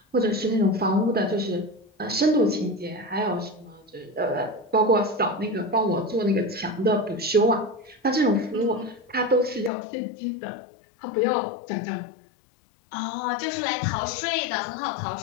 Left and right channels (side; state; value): right; drops out; at 9.7 s